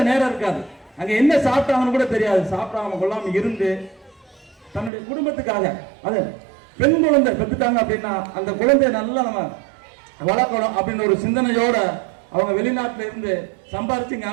நேரம் இருக்காது. அங்க என்ன சாப்பிட்டாங்கன்னு கூட தெரியாது. சாப்பிடாம கொள்ளாம இருந்து தன்னுடைய குடும்பத்துக்காக அது பெண் குழந்தை பெற்றுட்டாங்க அப்படின்னா அந்த குழந்தைய நல்லா நம்ம வளர்க்கணும் அப்படின்னு ஒரு சிந்தனையோட அவங்க வெளிநாட்டுல இருந்து சம்பாரிச்சு இங்க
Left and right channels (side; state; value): left; drops out; at 4.9 s